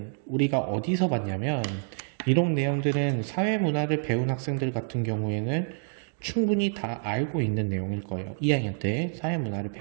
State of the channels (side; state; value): left; silent; 60 dB below the other